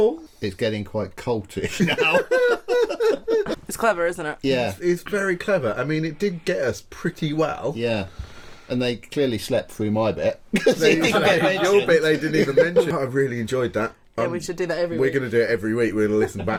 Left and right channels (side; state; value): both; identical; correlation 1.00